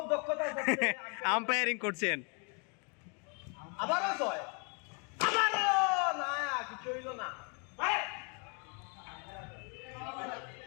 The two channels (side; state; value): right; quieter; 35.9 dB